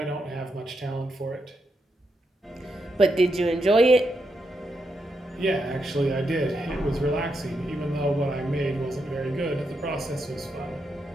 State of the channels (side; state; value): both; normal; correlation 0.83